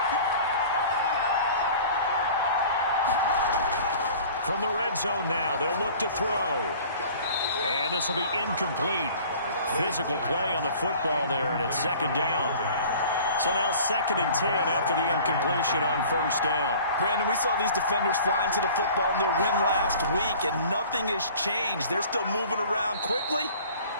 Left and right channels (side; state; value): both; inverted; correlation -0.46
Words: From the red zone now, they'll look to throw. And this will be incomplete. Physical play on the football there, and it's second down. So now 2nd and 10 after the incompletion on first down. Brandon, we saw these defenders flying to the football in their win last week, and nothing has changed. They're still moving around quickly